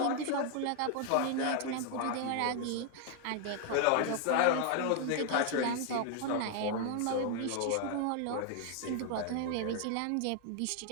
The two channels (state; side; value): different; both; correlation 0.00